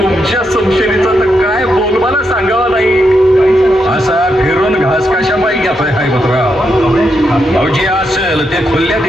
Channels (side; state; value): both; normal; correlation 0.82